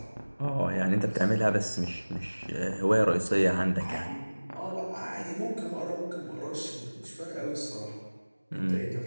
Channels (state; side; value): inverted; both; correlation -1.00